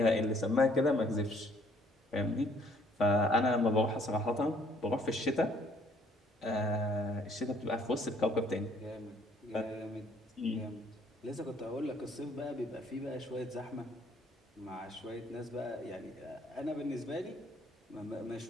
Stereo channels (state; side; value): normal; both; correlation 0.63